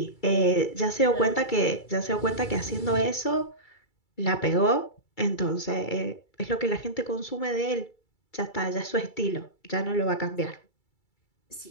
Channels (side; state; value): right; late; 2.3 ms